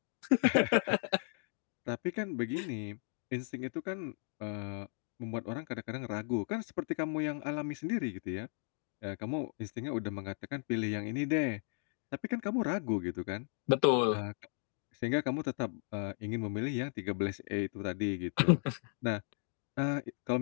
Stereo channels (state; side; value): silent; right; 54 dB below the other